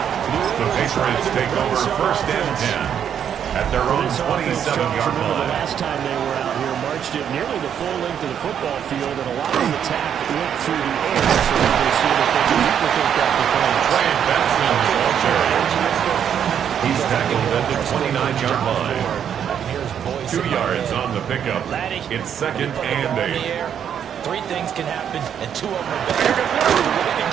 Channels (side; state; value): left; quieter; 8.7 dB